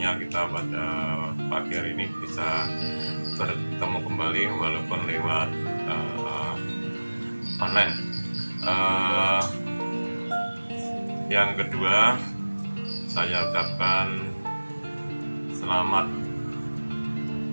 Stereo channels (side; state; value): both; inverted; correlation -1.00